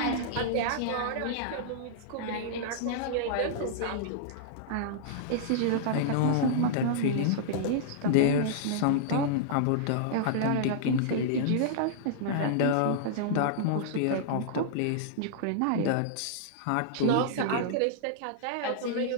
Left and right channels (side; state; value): both; different; correlation -0.02